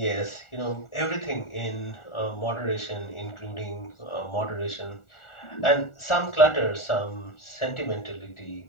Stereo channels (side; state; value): right; late; 1.4 ms